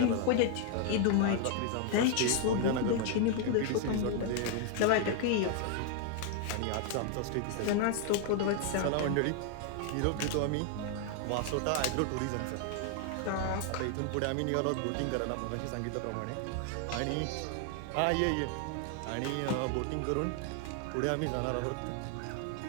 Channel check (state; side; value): different; both; correlation 0.00